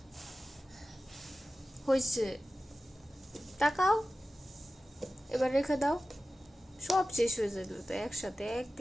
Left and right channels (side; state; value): both; normal; correlation 0.95